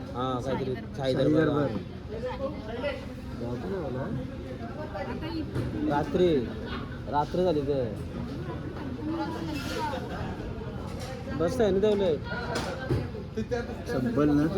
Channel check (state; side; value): identical; both; correlation 1.00